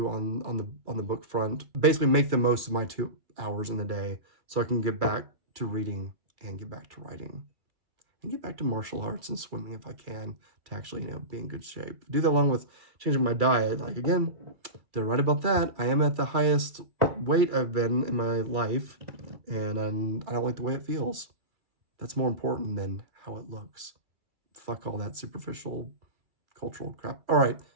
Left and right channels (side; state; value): left; late; 2.3 ms